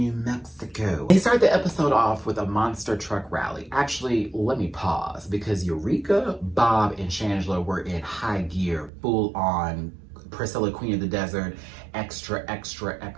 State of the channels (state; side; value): drops out; left; at 8.9 s